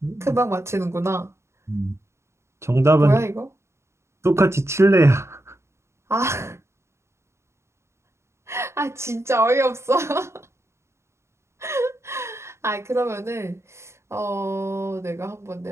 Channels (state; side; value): late; left; 0.13 ms